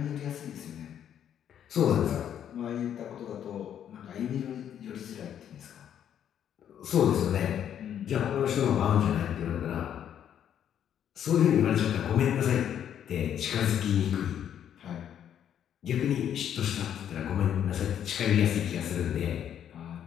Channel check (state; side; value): quieter; right; 9.6 dB